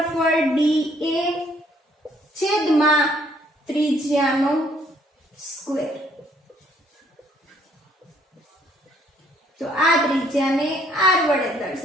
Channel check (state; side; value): normal; both; correlation 0.65